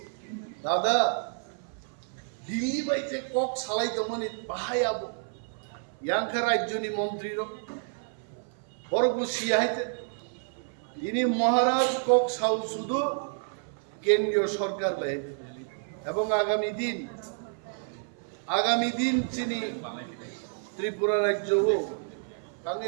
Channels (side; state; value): left; silent; 56 dB below the other